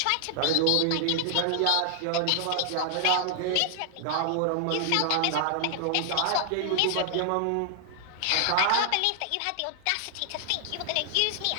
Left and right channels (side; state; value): both; different; correlation 0.00